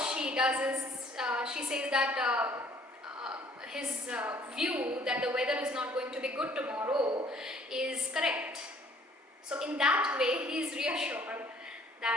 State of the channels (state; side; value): normal; both; correlation 0.59